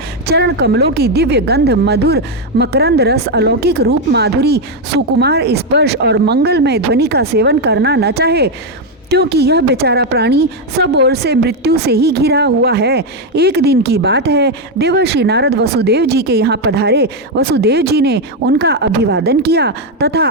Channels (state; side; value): normal; both; correlation 0.04